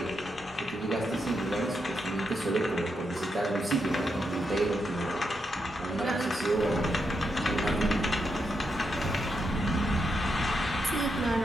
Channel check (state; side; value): normal; both; correlation 0.83